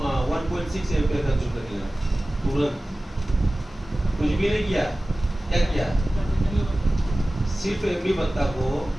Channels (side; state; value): both; normal; correlation 0.97